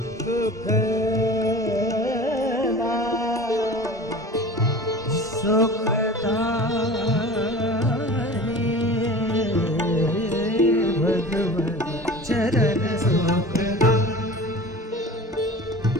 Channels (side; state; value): both; normal; correlation 0.38